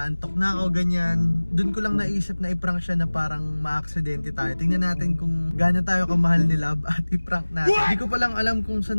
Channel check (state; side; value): inverted; both; correlation -1.00